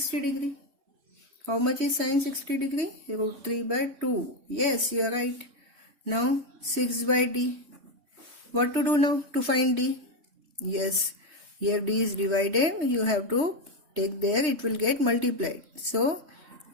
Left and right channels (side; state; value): left; late; 3.2 ms